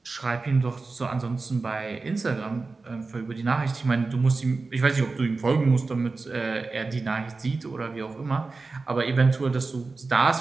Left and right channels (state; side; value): quieter; left; 3.9 dB